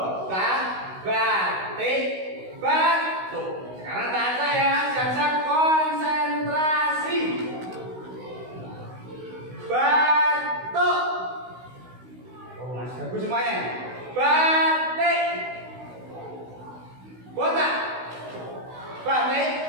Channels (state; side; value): late; left; 16 ms